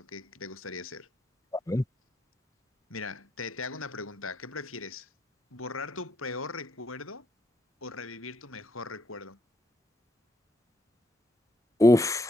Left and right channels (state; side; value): normal; both; correlation 0.75